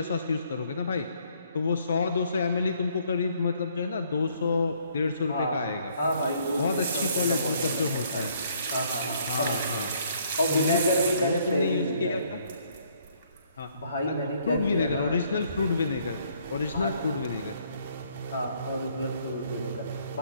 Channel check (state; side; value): inverted; both; correlation -0.66